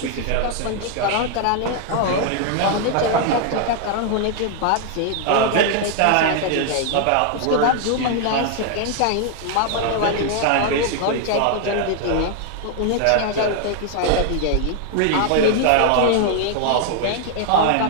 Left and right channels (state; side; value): different; both; correlation 0.00